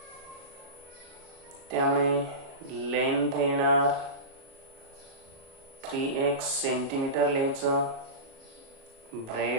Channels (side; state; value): left; late; 37 ms